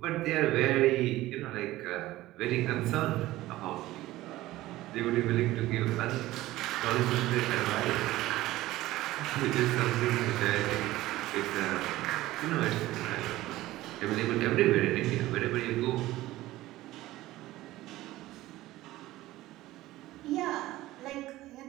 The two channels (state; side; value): quieter; left; 16.7 dB